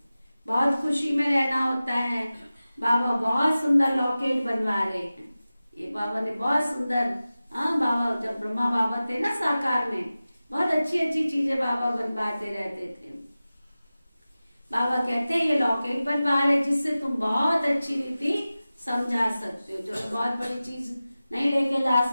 बहुत खुशी में रहना होता है। बाबा बहुत सुंदर लॉकेट बनवा रहे हैं। ये बाबा ने बहुत सुंदर, हाँ बाबा जब ब्रह्मा बाबा थे ना साकार में, बहुत अच्छी अच्छी चीजें बाबा बनवाते रहते थे। बाबा कहते हैं ये लॉकेट बनवा रहे जिससे तुम बहुत अच्छी रीति समझा सकते हो। जो बहुत बड़ी चीज नहीं लेके जा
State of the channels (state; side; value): inverted; both; correlation -0.96